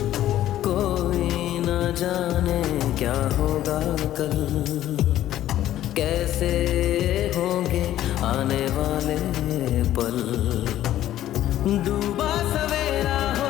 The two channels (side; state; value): right; quieter; 12.9 dB